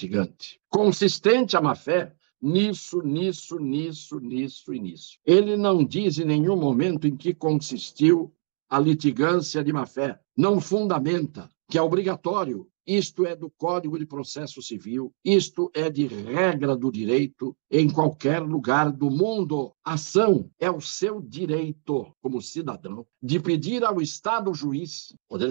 Consistente a má-fé nisso. Ele não diz em nenhum momento em que consistiu a litigância de má-fé. Não fundamenta que é obrigatório. Isto é do Código de Processo Civil, isto é de regra do direito em qualquer lugar do mundo. Ação é o seu direito, como cidadão, de pedir ao Estado juiz, Poder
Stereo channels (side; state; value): left; silent; 62 dB below the other